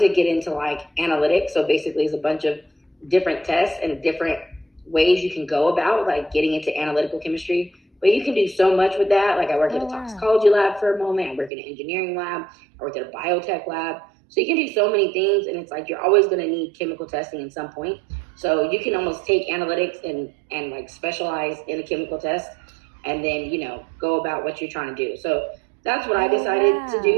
get into analytics. So basically it's a bunch of different tests and different ways you can go about getting into analytical chemistry. But you can do so much with that. I worked at a toxicology lab for a moment. I worked in an engineering lab. I worked at a biotech lab. So you can do so many things, and it's you're always going to need chemical testing at some point. So you can almost take analytics and specialize in a chemical test, and then go about what you're trying to do. So that's what I decided to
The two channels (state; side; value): drops out; left; at 11.5 s